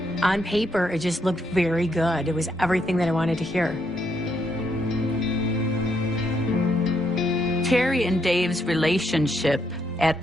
On paper, it just looked very good. It was everything that I wanted to hear. Terry and Dave's relationship at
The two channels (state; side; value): normal; both; correlation 0.76